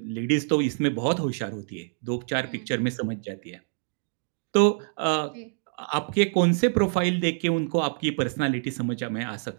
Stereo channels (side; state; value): left; silent; digital silence